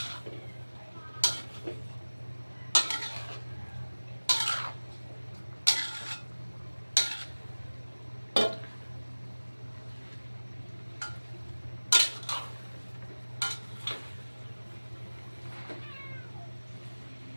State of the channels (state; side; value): inverted; both; correlation -1.00